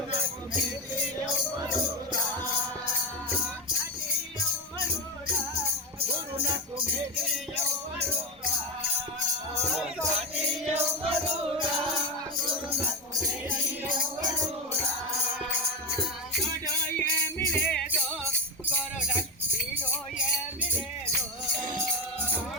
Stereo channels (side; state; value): both; normal; correlation 0.14